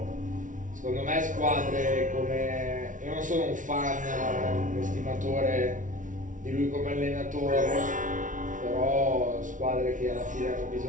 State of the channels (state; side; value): late; left; 0.37 ms